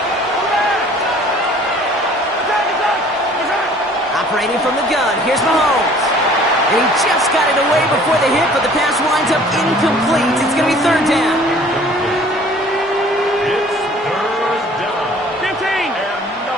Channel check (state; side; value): normal; both; correlation 0.52